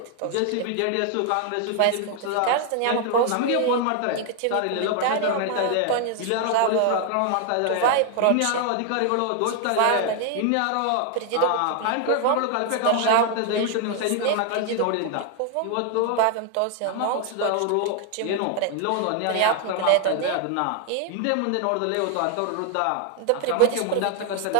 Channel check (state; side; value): different; both; correlation 0.00